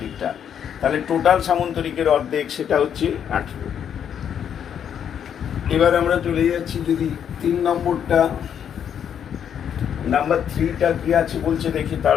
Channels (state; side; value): quieter; right; 8.6 dB